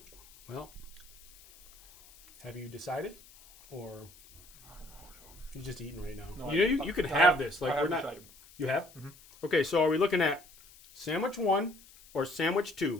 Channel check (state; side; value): noise; left; hiss, 23 dB below the sound